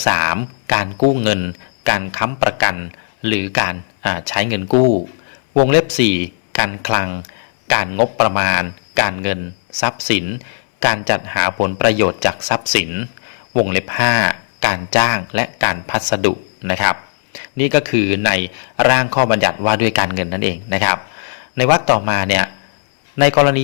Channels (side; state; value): right; silent; 62 dB below the other